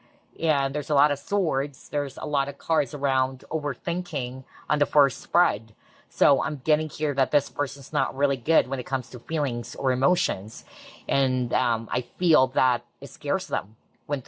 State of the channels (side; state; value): both; identical; correlation 1.00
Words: And there's a lot of swords. There's a lot of cards around overthinking on the first spread. So I'm getting here that this person's not really good when it comes to feelings or emotions. And I feel that it scares them when